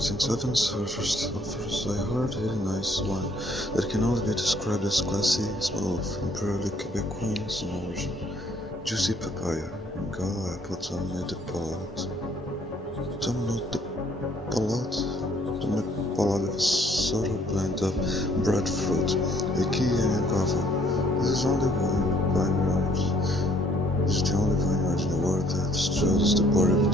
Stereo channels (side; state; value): both; normal; correlation 0.63